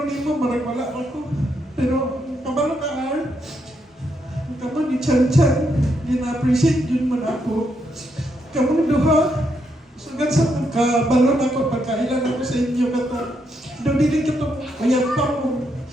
ni mo, marag wala ako. Pero kabalo ka kamu ni Chan Chan, gina-appreciate yun man ako. Kamu duha, sugat sa kabalo na ako, pagkailan ako sa inyo katong. Doon din katong ayat pa mo.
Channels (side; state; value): both; normal; correlation 0.79